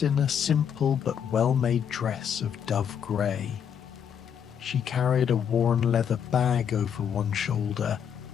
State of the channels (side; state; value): right; quieter; 8.1 dB